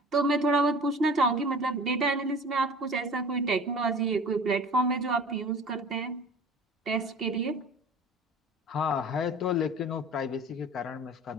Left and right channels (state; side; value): normal; both; correlation 0.42